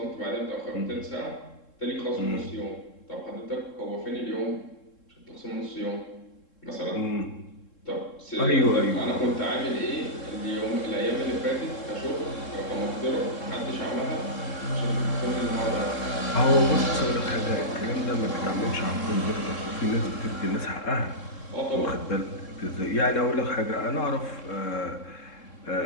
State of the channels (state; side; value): late; right; 3.7 ms